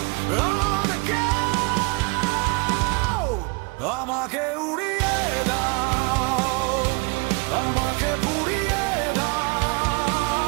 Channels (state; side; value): quieter; left; 30.1 dB